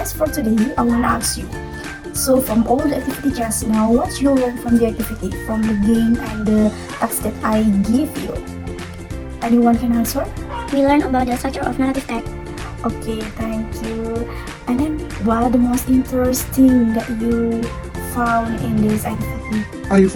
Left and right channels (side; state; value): both; identical; correlation 1.00